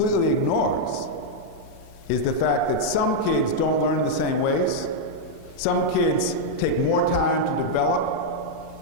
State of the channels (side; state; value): both; normal; correlation -0.03